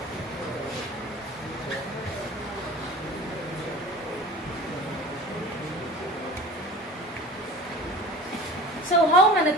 So how many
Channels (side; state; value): both; normal; correlation 0.39